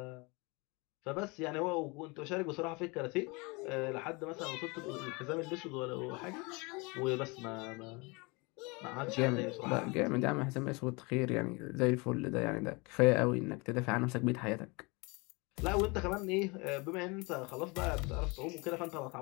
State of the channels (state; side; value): quieter; right; 27.6 dB